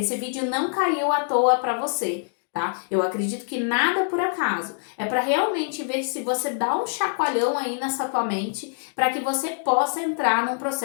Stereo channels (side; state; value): right; silent; digital silence